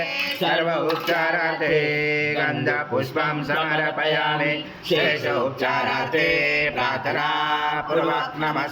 सर्व उपचारार्थे गंध पुष्पं समर्पयामि शेष उपचारार्थे प्रार्थना पूर्वक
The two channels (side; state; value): both; identical; correlation 1.00